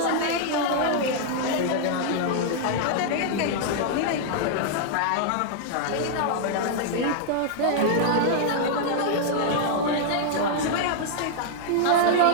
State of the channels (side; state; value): both; different; correlation -0.01